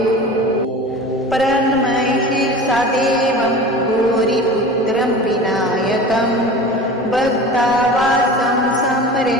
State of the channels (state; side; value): normal; both; correlation 0.36